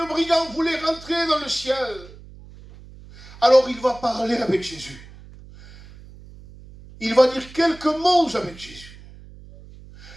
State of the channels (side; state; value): right; noise; hum, 20 dB below the sound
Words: brigand voulait rentrer dans le ciel. Alors il va parler avec Jésus. Il va dire quelques mots avec Jésus.